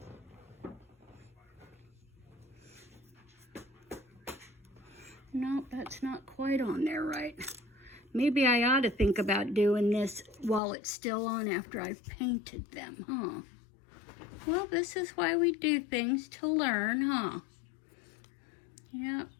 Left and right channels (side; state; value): right; drops out; at 10.6 s